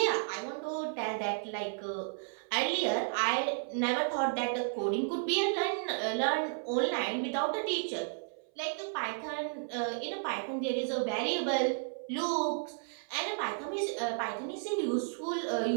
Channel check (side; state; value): left; silent; 56 dB below the other